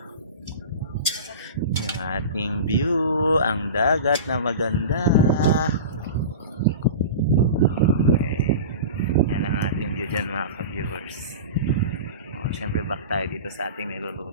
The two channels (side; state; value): both; inverted; correlation -0.31